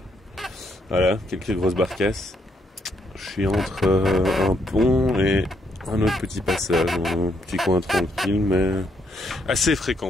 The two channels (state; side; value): normal; both; correlation 0.74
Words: Voilà, quelques grosses barcasses. Je suis entre un pont et un autre petit passage. Un petit coin tranquille, mais assez